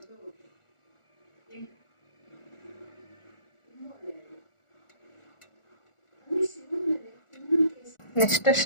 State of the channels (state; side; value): late; right; 1.4 ms